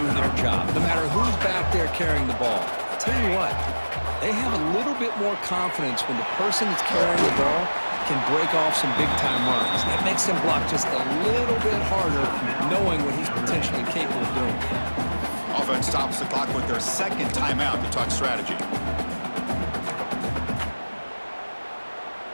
their job, no matter who's back there carrying the ball. I'll tell you what, they have a little bit more confidence when the person that's carrying the ball can break off some big-time runs. That makes them block just a little bit harder, knowing what he's potentially capable of doing. Offense stops the clock with their second timeout to talk strategy.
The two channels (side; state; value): both; inverted; correlation -1.00